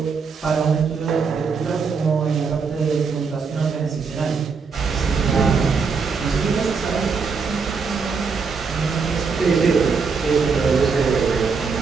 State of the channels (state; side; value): quieter; left; 5.2 dB